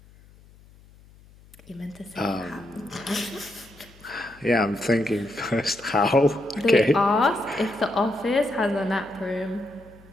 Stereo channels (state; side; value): noise; left; hum, 25 dB below the sound